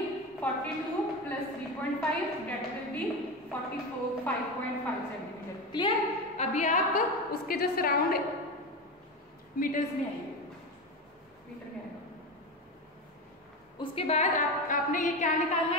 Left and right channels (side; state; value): both; normal; correlation 0.20